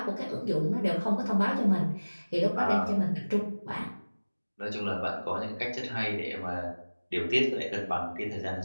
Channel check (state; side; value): inverted; both; correlation -1.00